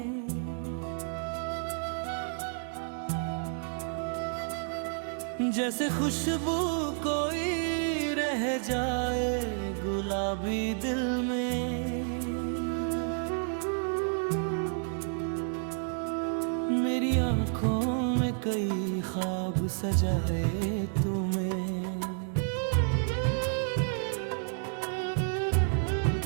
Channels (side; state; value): left; silent; 57 dB below the other